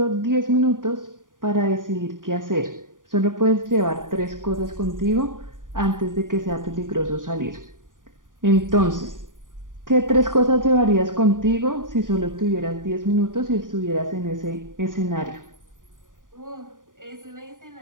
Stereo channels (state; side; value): late; left; 0.88 ms